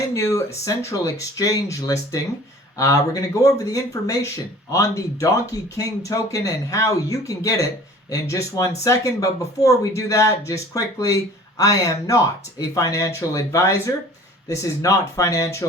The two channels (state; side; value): normal; both; correlation 0.47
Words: new central exchange listing. We're going to go over the information on the Doky King token and how you can get it in just 1 second. But before we do that, just quickly, I am not a financial advisor. This is not